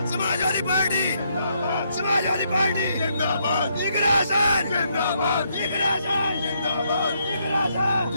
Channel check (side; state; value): both; inverted; correlation -0.75